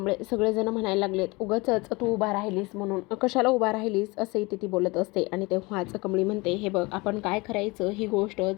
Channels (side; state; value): right; quieter; 24.7 dB